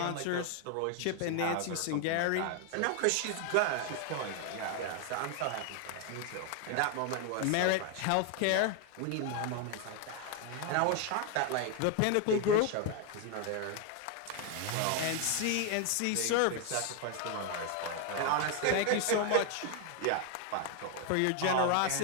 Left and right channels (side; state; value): both; different; correlation 0.01